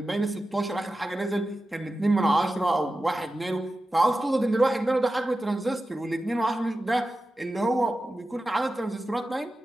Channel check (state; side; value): normal; both; correlation 0.93